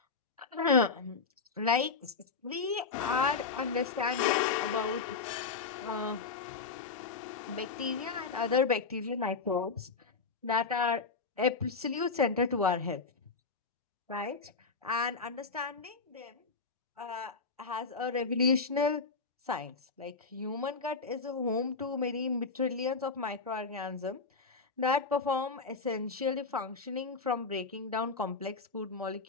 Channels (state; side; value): quieter; right; 4.6 dB